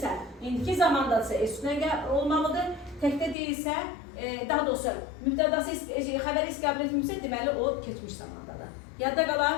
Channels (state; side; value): drops out; right; at 3.4 s